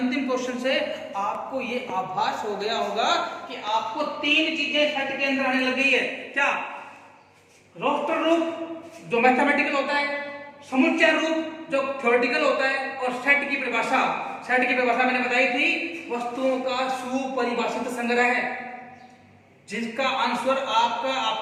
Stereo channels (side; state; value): both; identical; correlation 1.00